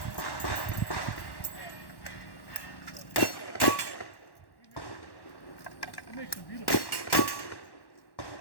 It makes them beautiful.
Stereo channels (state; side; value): late; right; 1.1 ms